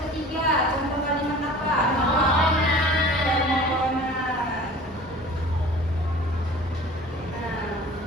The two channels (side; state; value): both; normal; correlation 0.43